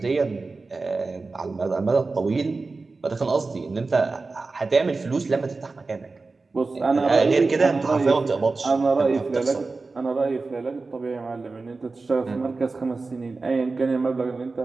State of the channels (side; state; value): left; quieter; 3.8 dB